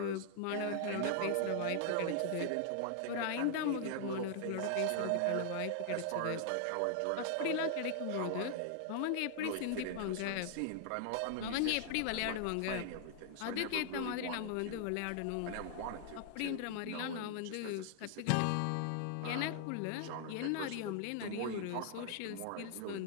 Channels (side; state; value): both; different; correlation 0.00